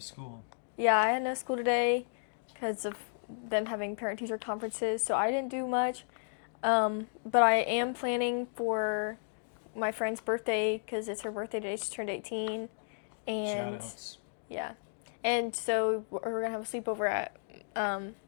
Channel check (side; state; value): right; silent; digital silence